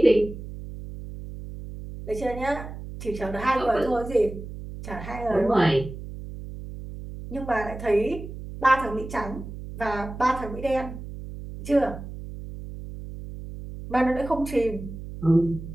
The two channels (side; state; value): right; noise; hum, 11 dB below the sound